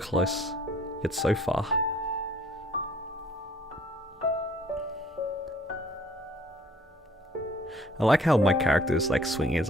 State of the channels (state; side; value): normal; both; correlation 0.58